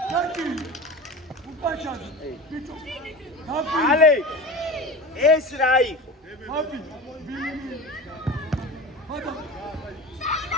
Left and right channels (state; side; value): normal; both; correlation 0.31